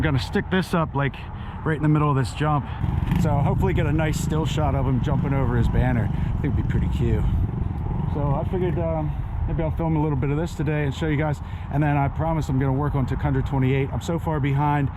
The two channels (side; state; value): both; identical; correlation 1.00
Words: gonna stick this up like right in the middle of this jump, so hopefully get a nice still shot of him jumping over his banner. I think it'd be pretty cute. So I figured maybe I'll film a little bit of this today and show you guys, and then I promise I'm going to work on Tuk 128. I'm so far behind.